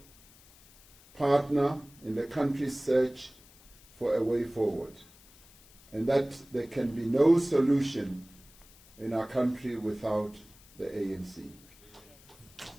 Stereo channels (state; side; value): noise; left; hiss, 25 dB below the sound